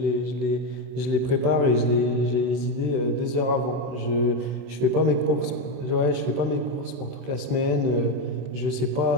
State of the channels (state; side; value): late; left; 24 ms